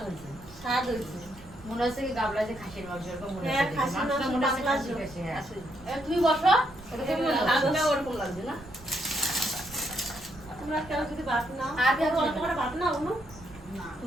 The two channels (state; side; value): noise; right; rumble, 20 dB below the sound